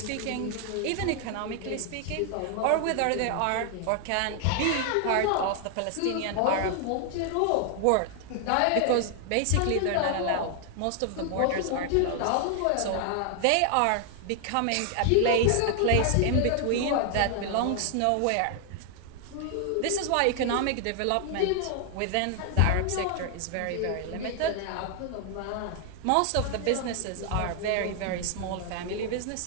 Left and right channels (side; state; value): both; different; correlation 0.00